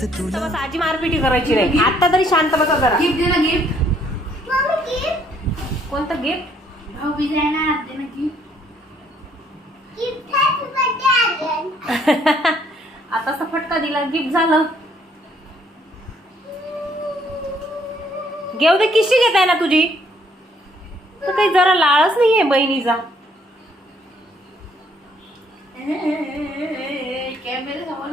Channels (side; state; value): both; normal; correlation 0.66